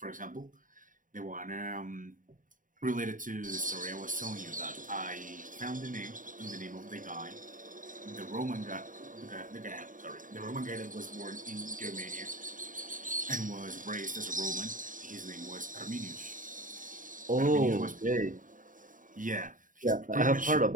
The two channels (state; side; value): late; left; 0.38 ms